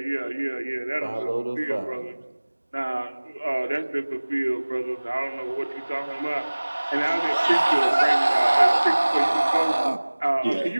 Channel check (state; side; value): inverted; both; correlation -1.00